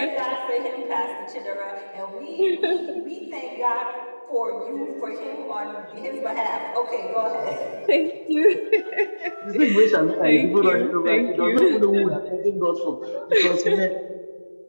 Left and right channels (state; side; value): inverted; both; correlation -1.00